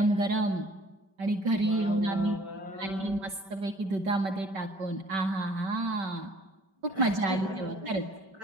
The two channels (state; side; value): late; left; 5.2 ms